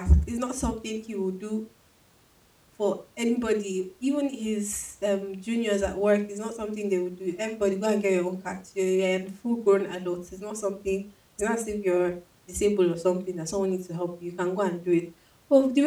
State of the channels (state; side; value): identical; both; correlation 1.00